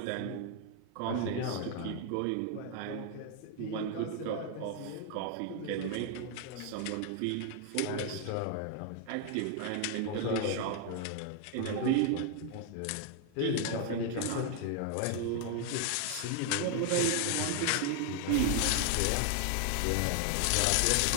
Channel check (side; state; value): both; different; correlation 0.00